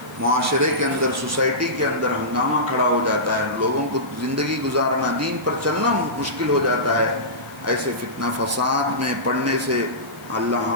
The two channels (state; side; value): noise; left; hiss, 24 dB below the sound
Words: معاشرے کے اندر، سوسائٹی کے اندر ہنگامہ کھڑا ہو جاتا ہے، لوگوں کو زندگی گزارنا، دین پر چلنا مشکل ہو جاتا ہے، ایسے فتنہ فساد میں پڑنے سے اللہ